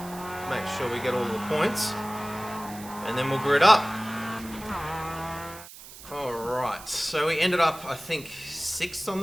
make sure we get all the points. And then we'll grid up. Alright, so we ended up, I think, 6th on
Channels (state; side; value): noise; right; hiss, 16 dB below the sound